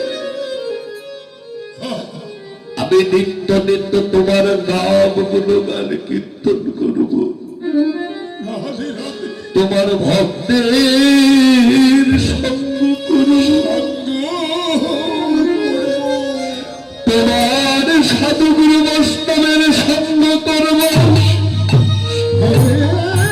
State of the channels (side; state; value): both; identical; correlation 1.00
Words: আমি নিত্য নিত্য তোমার নাম গুণগান কীর্তন করব, তোমার ভক্তের সঙ্গ করব, তোমার সাধুগুরু বৈষ্ণবের সঙ্গ করব।